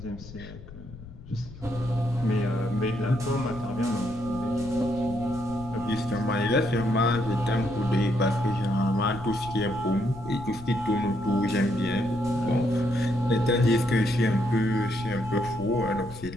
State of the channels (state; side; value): noise; left; rumble, 15 dB below the sound